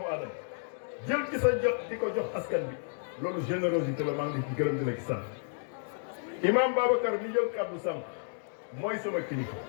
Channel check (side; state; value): right; silent; digital silence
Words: aadama jël ci sa jot di ko jox askan bi loolu générosité la maa ngi ci gërëm di la ci sant imam Babacar mi jël kàddu sànq mooy sama kilifa